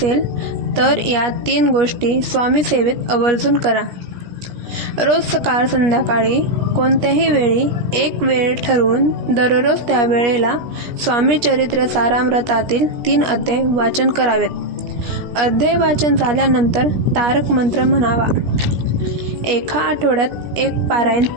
तर या 3 गोष्टी स्वामी सेवेत आवर्जून करा. रोज सकाळ संध्याकाळी कोणत्याही वेळी एक वेळ ठरवून दररोज त्या वेळेला स्वामी चरित्र सारामृतातील 3 अध्याय वाचन करावेत. अध्याय वाचन झाल्यानंतर तारक मंत्र म्हणावा. एका आठवड्यात एक पारायण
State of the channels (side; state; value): left; late; 17 ms